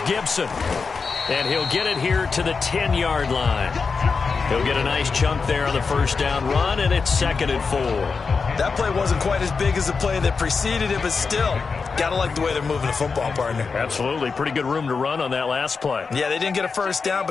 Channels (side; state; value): right; quieter; 4.9 dB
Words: Gibson. And he'll get it here to the 10-yard line. He'll get a nice chunk there on the first down run, and it's 2nd and 4. That play wasn't quite as big as the play that preceded it, but still, got to like the way they're moving the football, partner. Absolutely. Pretty good room to run on that last play. Yeah, they didn't get a first down,